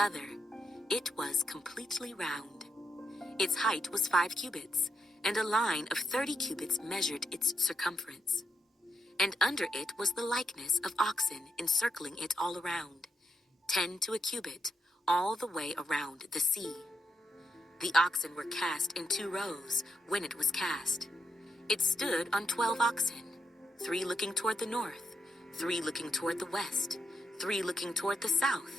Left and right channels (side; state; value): both; normal; correlation 0.82